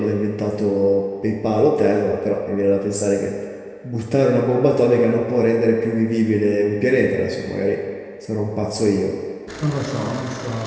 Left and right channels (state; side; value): identical; both; correlation 1.00